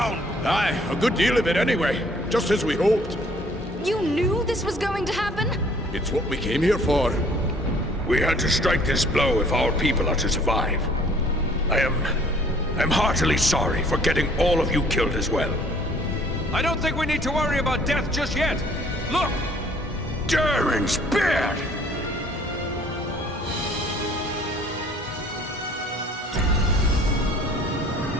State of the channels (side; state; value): both; normal; correlation 0.57